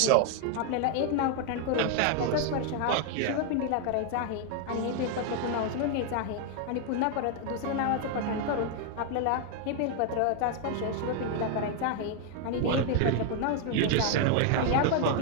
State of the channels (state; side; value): different; both; correlation 0.00